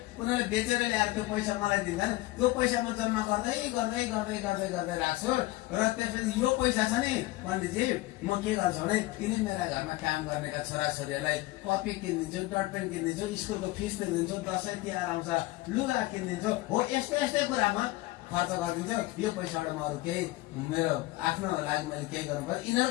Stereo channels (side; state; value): right; quieter; 19.0 dB